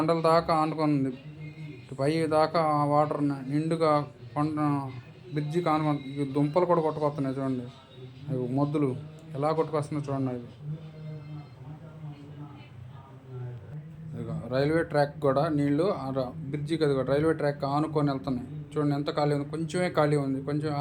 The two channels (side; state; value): both; identical; correlation 1.00